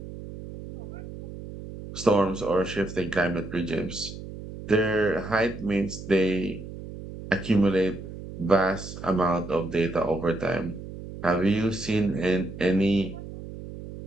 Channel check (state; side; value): noise; right; hum, 11 dB below the sound